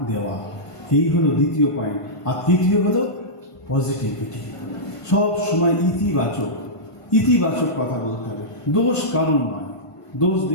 দেওয়া, এই হলো দ্বিতীয় পয়েন্ট। আর তৃতীয় হলো পজিটিভিটি, সব সময় ইতিবাচক ইতিবাচক কথা বলতে হবে। দোষ কারণ নয়, দোষ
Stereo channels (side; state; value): right; late; 1.5 ms